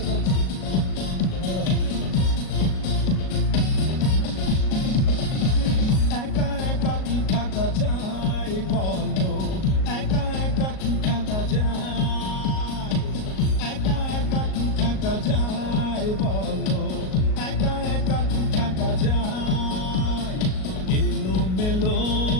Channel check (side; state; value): right; late; 38 ms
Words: hello একা একা কি থাকা যায় বলো, একা একা কি থাকা যায়, একা একা কি থাকা যায় বলো, একা একা কি থাকা যায়। এলো মেলো